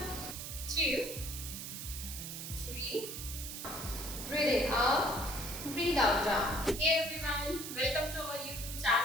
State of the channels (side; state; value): right; noise; hiss, 7 dB below the sound